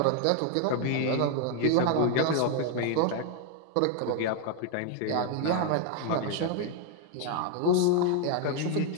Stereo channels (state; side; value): different; both; correlation 0.00